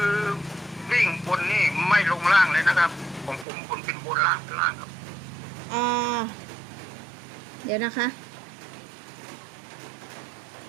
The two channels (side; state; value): left; drops out; at 3.5 s